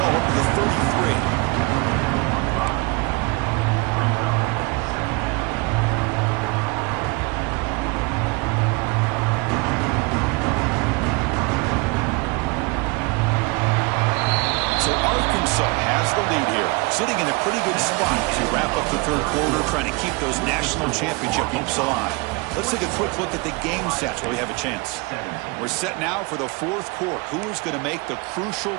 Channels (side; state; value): left; quieter; 28.2 dB